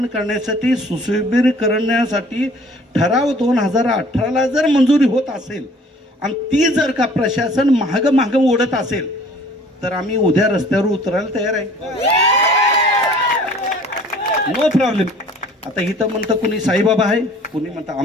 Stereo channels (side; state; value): both; normal; correlation 0.52